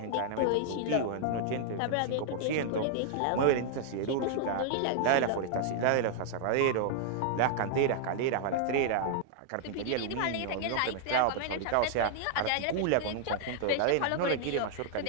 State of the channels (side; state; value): both; different; correlation -0.01